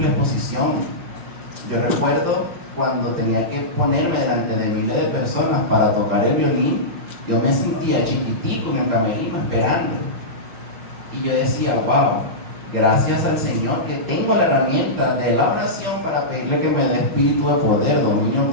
exposición. Yo recuerdo cuando tenía que ponerme delante de miles de personas para tocar el violín, yo me sentía chiquitico en el camerino esperando. Y yo decía, wow, gracias al Señor que tengo la herramienta de la oración para pedirle que me dé espíritu de poder, dominio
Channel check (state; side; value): late; left; 5.6 ms